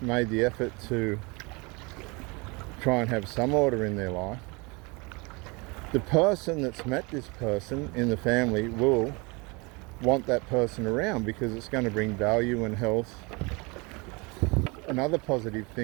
the effort to try and have some order in their life, the person that's met this person in the family will want that person around because it's going to bring value and health and other positive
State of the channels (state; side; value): quieter; left; 27.5 dB